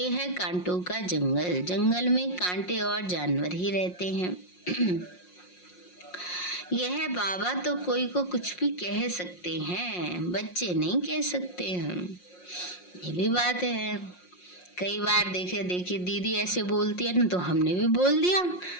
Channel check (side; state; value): right; late; 5.6 ms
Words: है कांटों का जंगल, जंगल में कांटे और जानवर ही रहते हैं। यह बाबा तो कोई को कुछ भी कह सकते हैं, बच्चे नहीं कह सकते हैं। ये भी बात है। कई बार देखे दीदी ऐसे बोलती है ना, तो हमने भी बोल दिया,